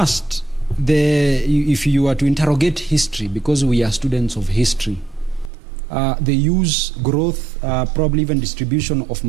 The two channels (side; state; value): left; drops out; at 5.5 s